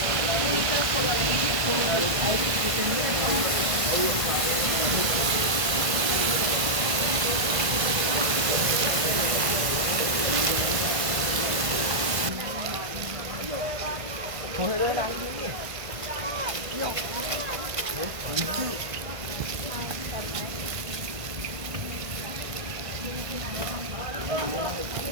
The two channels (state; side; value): late; left; 1.5 ms